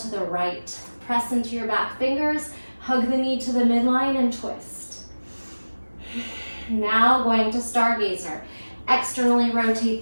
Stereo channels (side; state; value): both; inverted; correlation -1.00